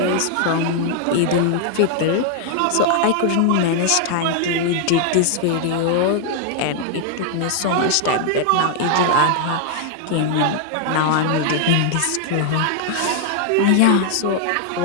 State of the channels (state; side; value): different; both; correlation 0.00